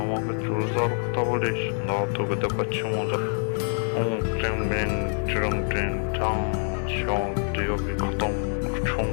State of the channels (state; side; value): silent; right; 61 dB below the other